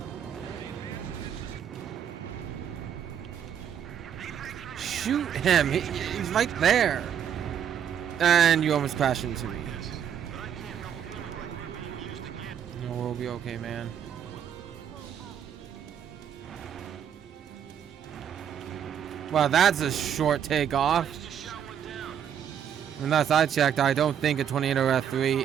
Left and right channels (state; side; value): quieter; left; 8.9 dB